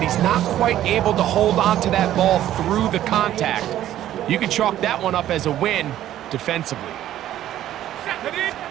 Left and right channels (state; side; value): quieter; left; 12.6 dB